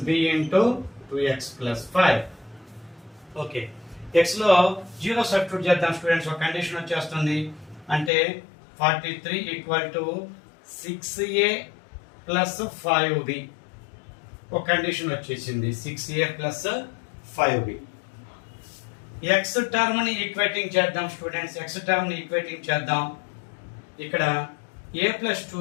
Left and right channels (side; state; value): right; drops out; at 8.1 s